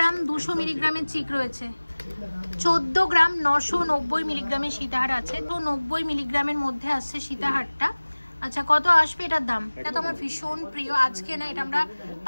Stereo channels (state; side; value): inverted; both; correlation -1.00